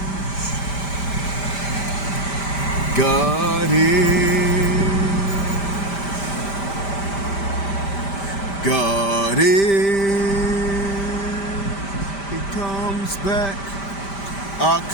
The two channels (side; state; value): right; late; 5.1 ms